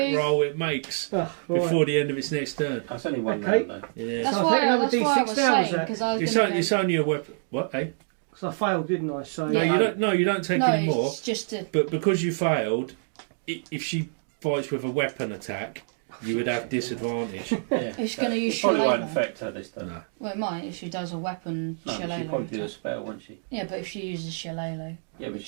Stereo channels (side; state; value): left; silent; digital silence